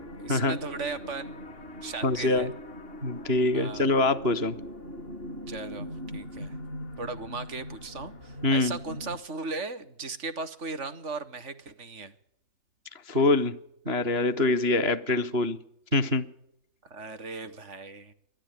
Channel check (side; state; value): left; late; 3.5 ms